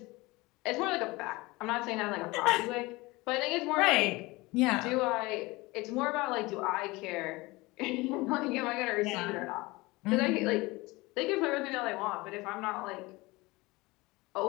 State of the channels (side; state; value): right; quieter; 22.2 dB